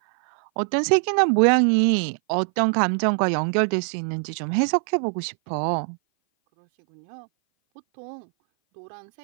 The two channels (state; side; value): silent; left; 58 dB below the other